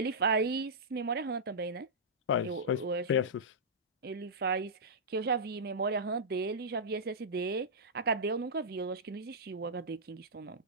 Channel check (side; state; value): both; normal; correlation -0.13